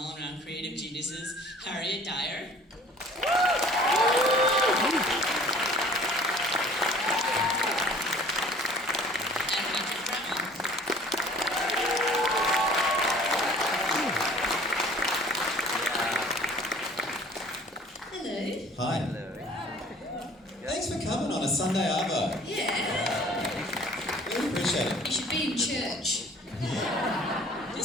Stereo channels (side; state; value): both; normal; correlation 0.50